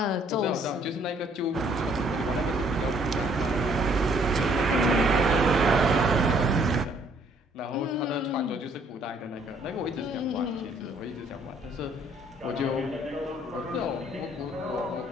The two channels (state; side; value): normal; both; correlation 0.63